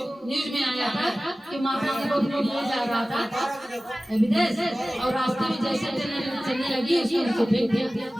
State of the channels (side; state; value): both; normal; correlation 0.97